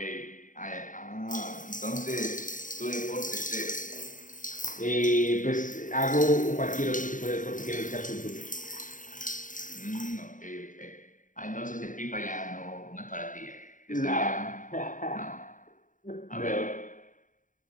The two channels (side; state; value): right; late; 0.38 ms